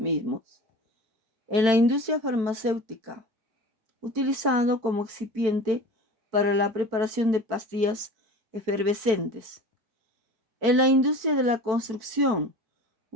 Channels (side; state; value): left; late; 4.5 ms